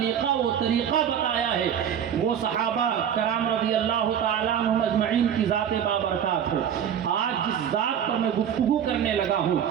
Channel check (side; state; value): left; quieter; 8.9 dB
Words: و طریقہ بتایا ہے، وہ صحابہ کرام رضی اللہ تعالیٰ عنہم اجمعین کی ذات بابرکات ہے۔ آج جس ذات پر میں گفتگو کرنے لگا ہوں،